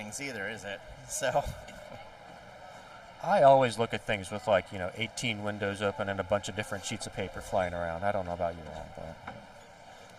either, is it? So. I always look at things with 18 windows open and a bunch of different sheets of paper flying around. I don't know about you all, but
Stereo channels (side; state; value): both; identical; correlation 1.00